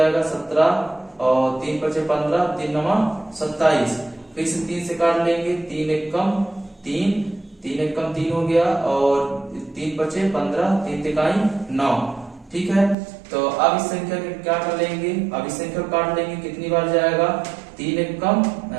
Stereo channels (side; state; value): left; drops out; at 13.0 s